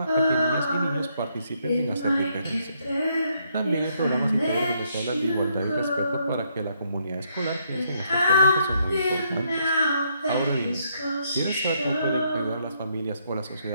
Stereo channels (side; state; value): both; inverted; correlation -0.73